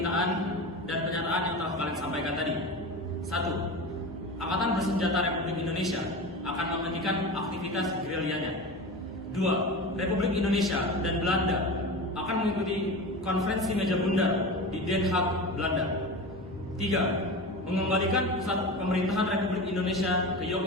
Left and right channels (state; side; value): normal; both; correlation 0.28